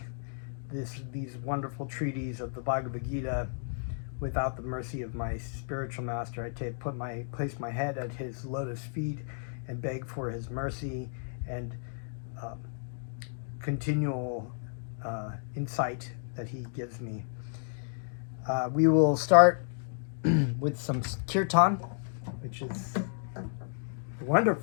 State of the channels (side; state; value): right; silent; digital silence